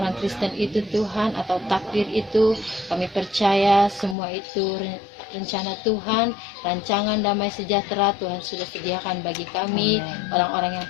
Kristen itu Tuhan, atau takdir itu. Kami percaya semua itu rencana Tuhan, rancangan damai sejahtera Tuhan sudah sediakan bagi kami, orang-orang yang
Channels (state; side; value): drops out; right; at 4.2 s